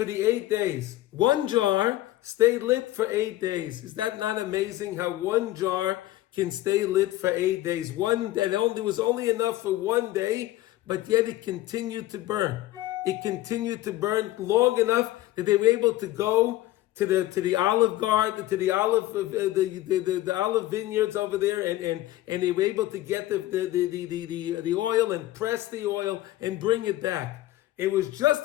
the 8 days. One jar stayed lit for 8 days. Is that not amazing how one jar can stay lit for 8 days? There was only enough for 1 day, but yet it continued to burn. It continued to burn long enough that they were able to go to the olive garden, to the olive vineyards over there, and they were able to get the oil and press the oil and bring it back. It was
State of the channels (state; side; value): quieter; right; 15.8 dB